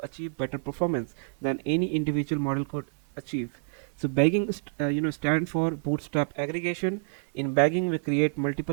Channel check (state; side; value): silent; left; digital silence